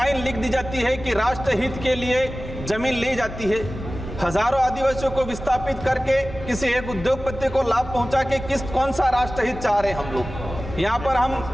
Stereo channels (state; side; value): normal; both; correlation 0.96